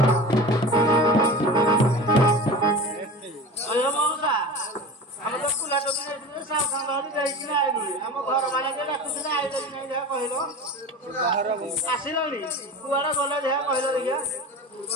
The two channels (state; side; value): normal; both; correlation 0.32